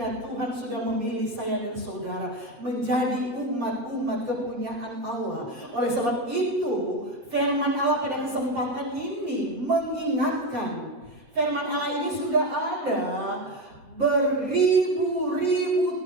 Tuhan sudah memilih saya dan saudara menjadi umat-umat kepunyaan Allah. Oleh sebab itu, firman Allah pada kesempatan ini mengingatkan, firman Allah ini sudah ada beribu-ribu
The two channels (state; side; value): late; left; 7.7 ms